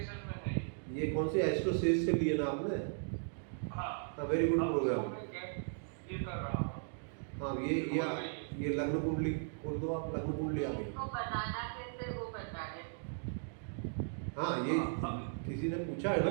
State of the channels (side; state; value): left; silent; digital silence